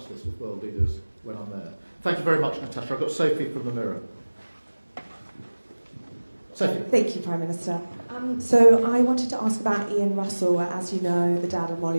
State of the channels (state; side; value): inverted; both; correlation -1.00